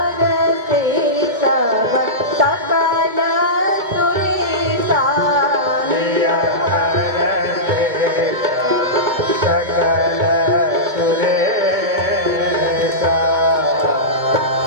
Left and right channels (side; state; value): left; late; 2.2 ms